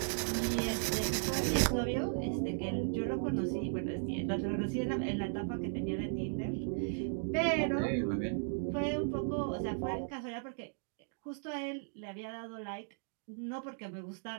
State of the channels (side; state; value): left; silent; digital silence